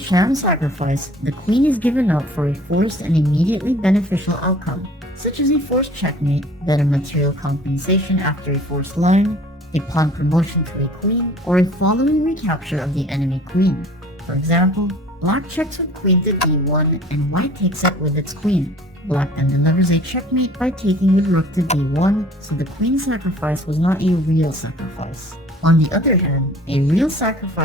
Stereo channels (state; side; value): normal; both; correlation 0.49